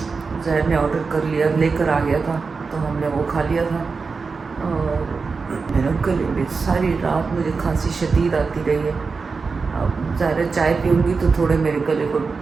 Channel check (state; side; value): quieter; left; 4.7 dB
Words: ने ऑर्डर कर लिया, लेकर आ गया था, तो हमने वो खा लिया था। और मेरे गले में सारी रात मुझे खांसी शदीद आती रही है। अब ज़्यादा चाय पीऊँगी तो थोड़े मेरे गले को